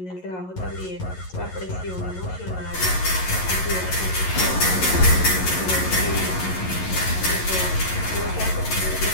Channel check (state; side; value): late; right; 11 ms